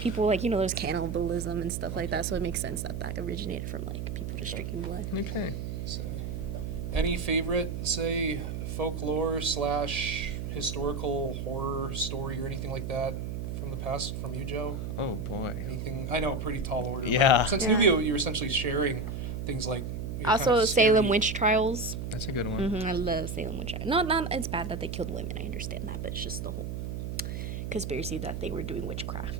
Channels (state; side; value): noise; right; hum, 4 dB below the sound